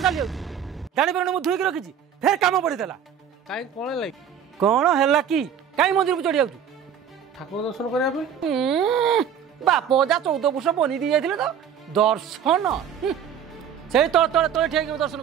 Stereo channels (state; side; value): quieter; left; 8.4 dB